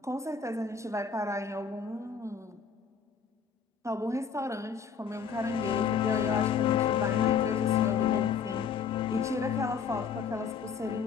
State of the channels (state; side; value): quieter; right; 6.5 dB